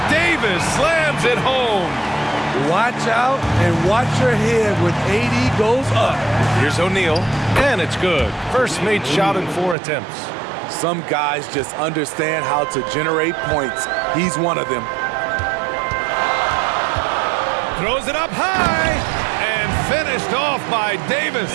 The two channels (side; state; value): left; drops out; at 9.8 s